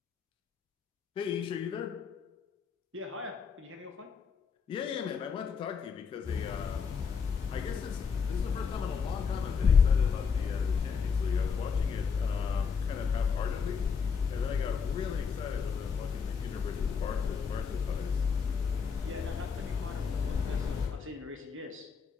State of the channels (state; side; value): quieter; right; 6.1 dB